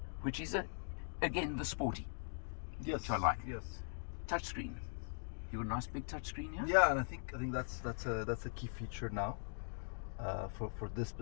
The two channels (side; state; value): right; silent; digital silence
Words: which is, again, the sporty, which I like. Yes. Touchscreen. You got a nice big touchscreen here? Yeah, and I think that's a key feature now for this